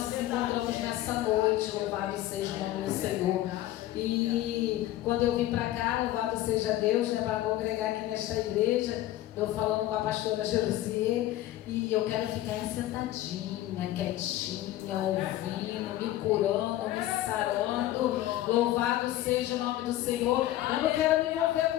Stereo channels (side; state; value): right; quieter; 14.6 dB